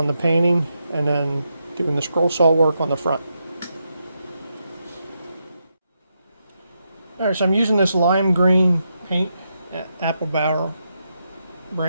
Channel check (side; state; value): both; inverted; correlation -0.83